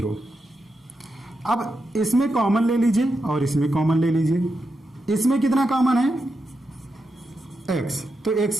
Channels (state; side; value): normal; both; correlation 0.86